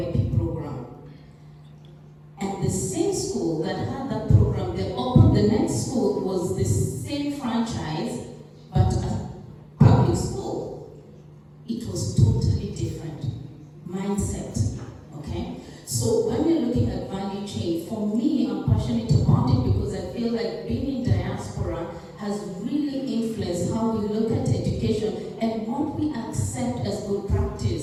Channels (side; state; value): both; identical; correlation 1.00